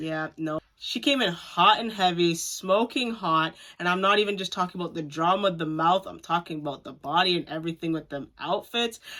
No. She came in hot and heavy, smoking hot, and I'm not even just talking about the drama of the mouth. I'm talking about the body and everything with them outfits.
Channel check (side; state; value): both; identical; correlation 1.00